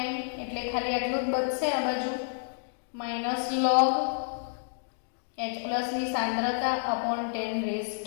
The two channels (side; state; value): right; silent; digital silence